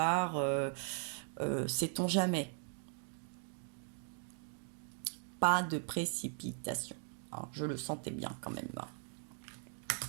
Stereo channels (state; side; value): silent; left; 52 dB below the other